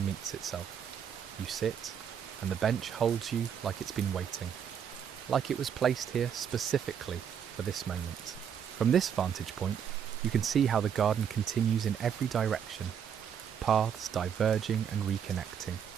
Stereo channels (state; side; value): quieter; left; 8.1 dB